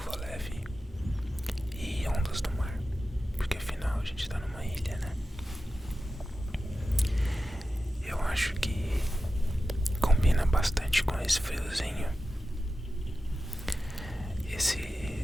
leve e ondas do mar, porque afinal a gente tá numa ilha, né? Eu acho que combina bastante com esse friozinho,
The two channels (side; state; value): both; normal; correlation 0.93